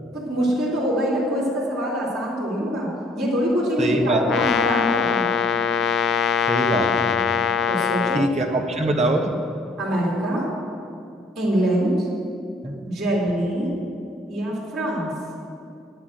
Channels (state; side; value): normal; both; correlation 0.60